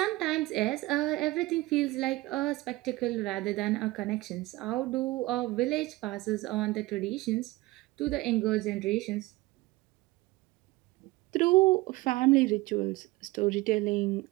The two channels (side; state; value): left; quieter; 20.0 dB